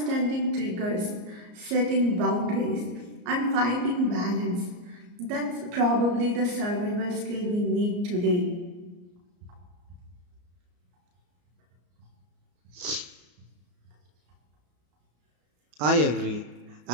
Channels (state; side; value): late; left; 34 ms